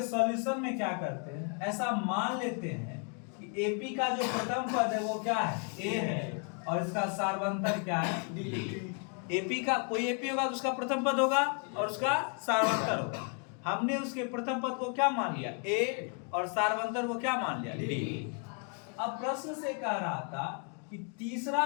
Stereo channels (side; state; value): right; quieter; 39.4 dB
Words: सॉल्यूशन में क्या करते हैं, ऐसा मान लेते हैं कि एपी का जो प्रथम पद है वो क्या है ए है और इसका सार्वंतर क्या है डी। एपी का कोई एपी होगा तो उसका प्रथम पद होगा और उसका सार्वंतर होगा। हमने उसके प्रथम पद को क्या मान लिया ए और सार्वंतर को क्या मान लिया डी। अब प्रश्न से कह रहा था कि तीसरा